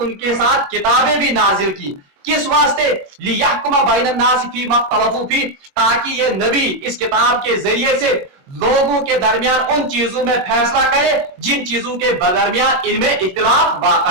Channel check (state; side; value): late; left; 22 ms